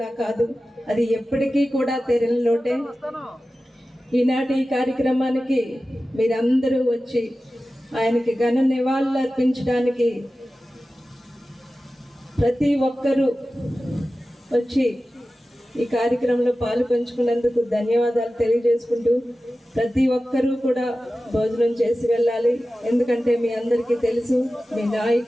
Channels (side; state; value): both; normal; correlation 0.95